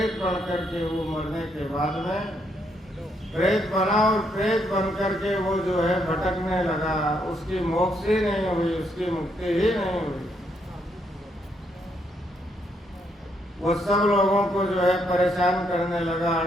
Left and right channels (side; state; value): both; normal; correlation 0.75